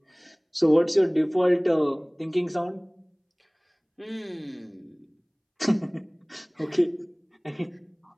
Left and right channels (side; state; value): both; identical; correlation 1.00